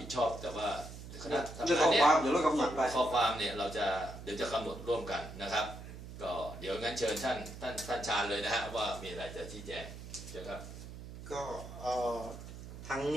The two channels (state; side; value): noise; right; hum, 12 dB below the sound